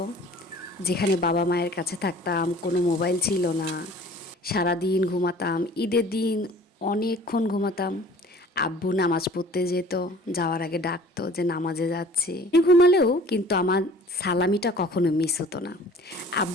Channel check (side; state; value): both; normal; correlation 0.49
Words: যেখানে বাবা মায়ের কাছে থাকতাম, কোনো মোবাইল ছিল না, সারাদিন ঘুমাতাম। ঈদের দিন অনেকক্ষণ ঘুমাতাম। আব্বু নামাজ পড়তে যেত, যাওয়ার আগে ডাকতো যে নামাজে যাচ্ছি। ঘুমালেও কিন্তু আমার সালামিটা কখনো মিস হতো না।